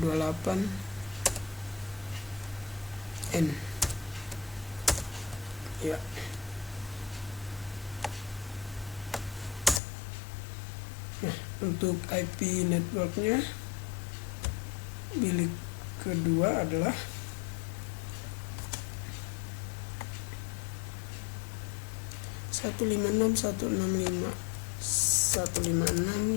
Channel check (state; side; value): drops out; right; at 9.8 s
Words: N ya. Nah, untuk IP networknya bilik kedua adalah 156.165